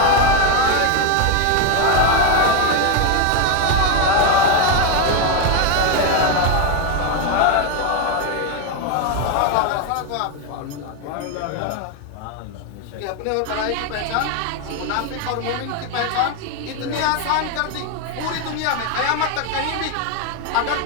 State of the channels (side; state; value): both; different; correlation 0.02